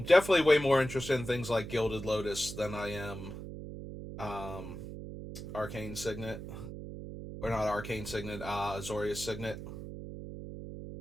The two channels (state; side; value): noise; right; hum, 9 dB below the sound